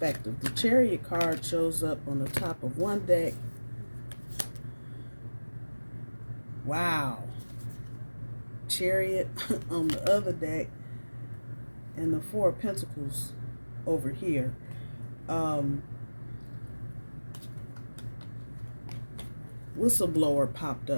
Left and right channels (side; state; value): both; inverted; correlation -1.00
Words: The Chariot card shows up on the top of one deck. Wow. Chariot on the other deck, and the Four of Pentacles over here. Whistleblower popped